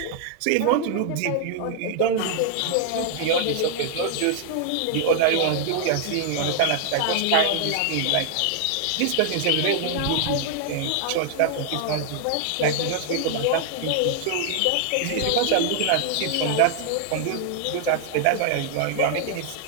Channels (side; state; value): both; different; correlation 0.00